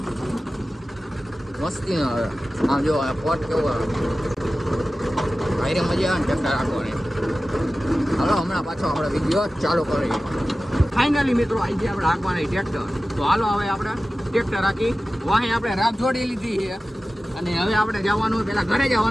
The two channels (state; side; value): normal; both; correlation 0.95